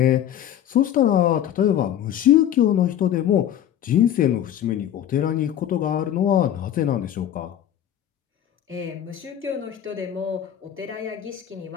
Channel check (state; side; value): quieter; right; 10.6 dB